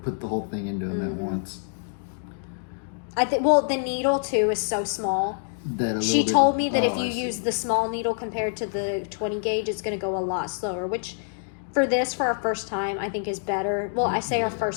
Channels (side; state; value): right; silent; digital silence